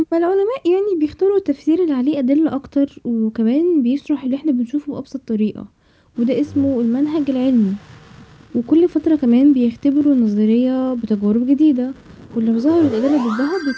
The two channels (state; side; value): identical; both; correlation 1.00